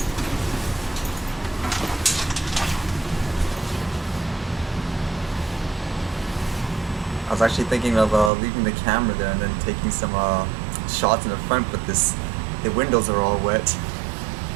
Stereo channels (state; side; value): drops out; left; at 8.3 s